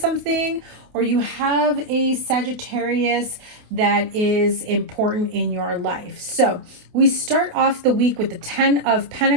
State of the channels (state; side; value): late; left; 28 ms